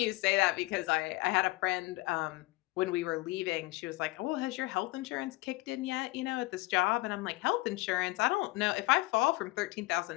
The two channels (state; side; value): quieter; right; 21.2 dB